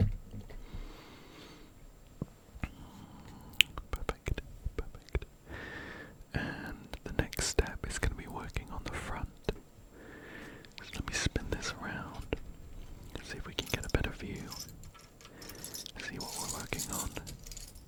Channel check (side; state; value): both; identical; correlation 1.00